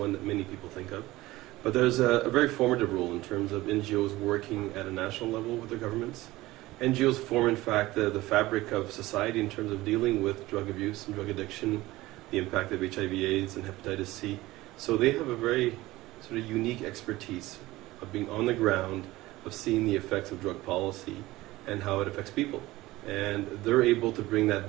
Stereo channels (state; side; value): quieter; left; 18.3 dB